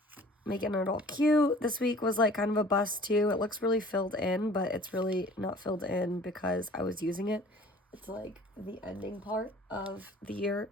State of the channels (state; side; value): normal; both; correlation 0.49